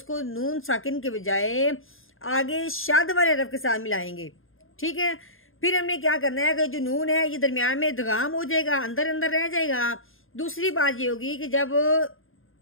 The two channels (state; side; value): late; right; 0.59 ms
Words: नून साकिन के बजाय आगे शद वाले हरफ के साथ मिलाएंगे। ठीक है, फिर हमने क्या करना है कि जो नून है ये दरमियान में इदगाम हो जाएगा, अंदर अंदर रह जाएगा। दूसरी बात ये होगी कि जब